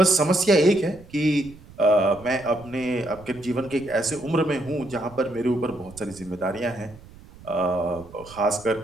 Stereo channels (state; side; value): noise; right; rumble, 21 dB below the sound